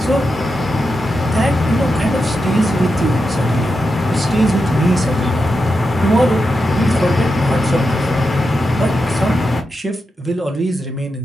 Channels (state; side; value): normal; both; correlation 0.88